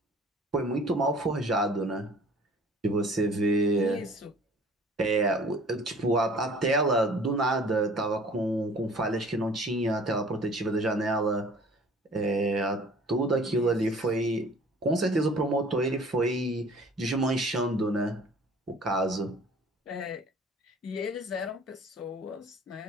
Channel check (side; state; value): both; normal; correlation 0.50